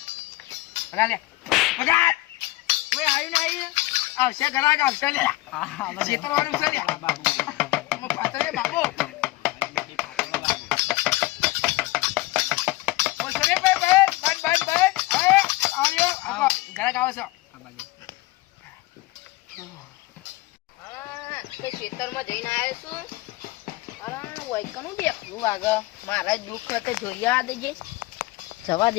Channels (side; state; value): right; quieter; 19.9 dB